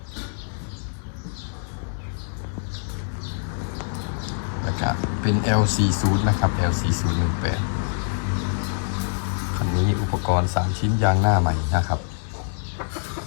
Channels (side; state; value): right; silent; digital silence